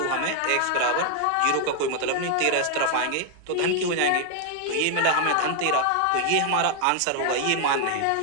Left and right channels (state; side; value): different; both; correlation 0.00